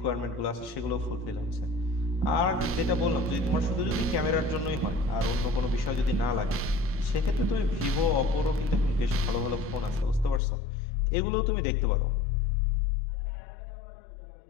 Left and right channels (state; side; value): drops out; right; at 10.4 s